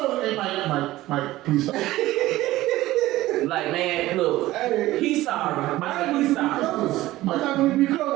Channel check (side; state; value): left; quieter; 16.6 dB